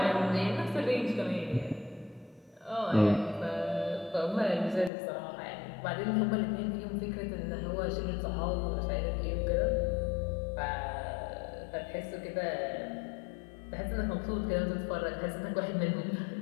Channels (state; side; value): drops out; right; at 4.9 s